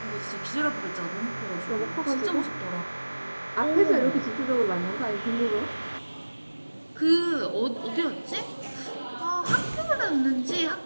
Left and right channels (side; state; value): both; inverted; correlation -1.00